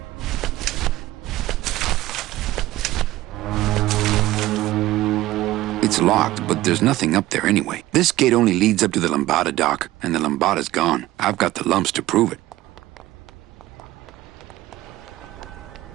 It's locked, but there's nothing up there anyway. This gate only leads up to the Lambada dock, and the Lambada's gone. I've got the lumps to prove it.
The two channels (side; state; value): left; quieter; 16.3 dB